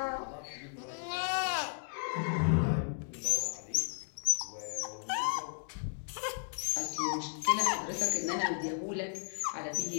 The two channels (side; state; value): right; silent; digital silence